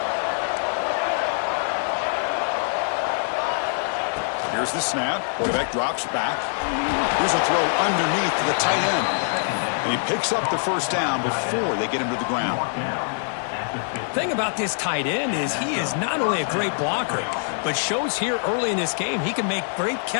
Here's the snap. Quarterback drops back. Here's a throw underneath to the tight end. And he picks up the first down before they get him to the ground. Thing about this tight end is he is not only a great blocker, but shows here early in this game he can make great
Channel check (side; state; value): right; silent; digital silence